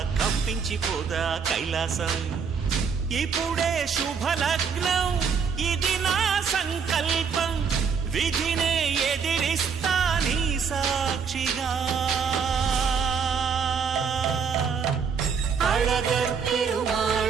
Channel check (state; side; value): quieter; left; 6.2 dB